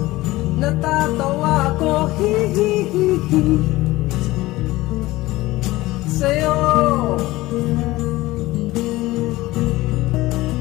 natatawa ko, hihihihi. Sa'yo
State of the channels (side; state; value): right; quieter; 18.6 dB